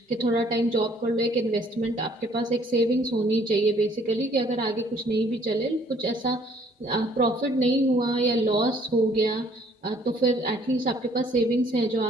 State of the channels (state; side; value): normal; both; correlation 0.61